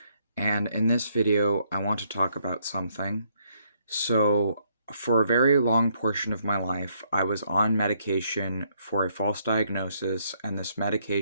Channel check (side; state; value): both; inverted; correlation -0.71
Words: and in this video I want to talk about something. So, for a very long portion of my life, I was on medication for a false diagnosis, and this